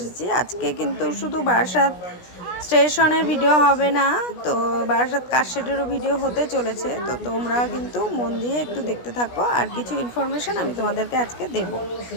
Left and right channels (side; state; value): right; late; 16 ms